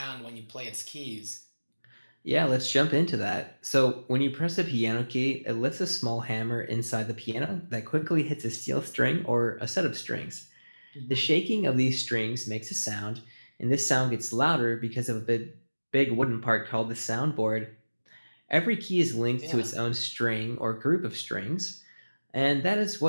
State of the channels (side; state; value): both; inverted; correlation -1.00